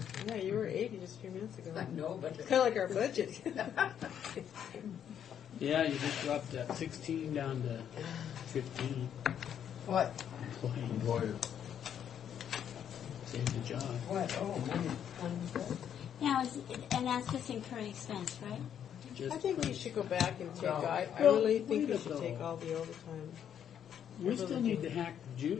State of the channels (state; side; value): quieter; right; 9.1 dB